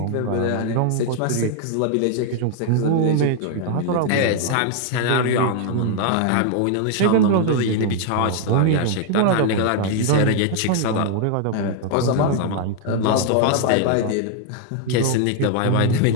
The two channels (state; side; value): different; both; correlation 0.00